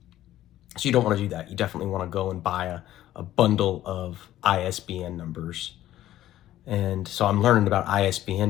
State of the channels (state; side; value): quieter; right; 13.5 dB